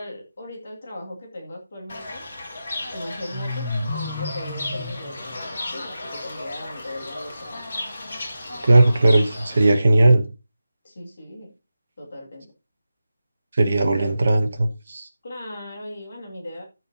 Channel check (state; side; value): inverted; both; correlation -0.92